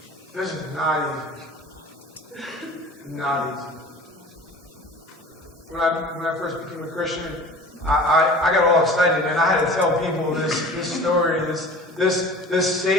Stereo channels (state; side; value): normal; both; correlation 0.41